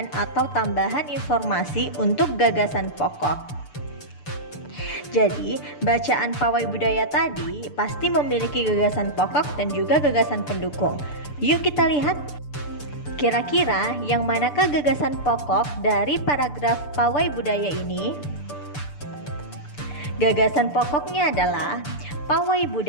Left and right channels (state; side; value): late; right; 6.8 ms